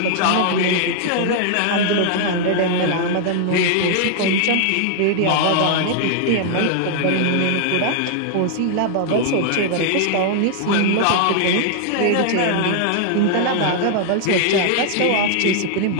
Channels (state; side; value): different; both; correlation 0.00